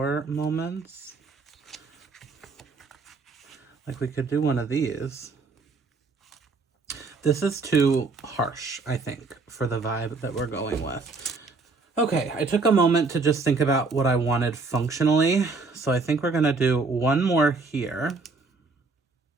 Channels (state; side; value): quieter; left; 4.0 dB